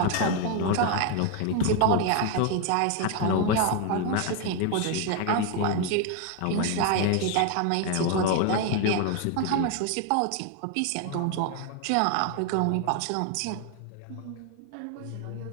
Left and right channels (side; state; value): both; different; correlation 0.01